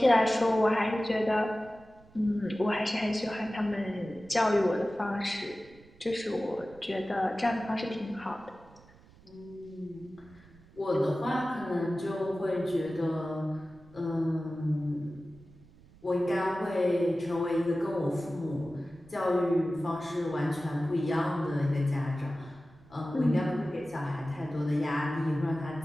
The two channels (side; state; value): right; noise; rumble, 25 dB below the sound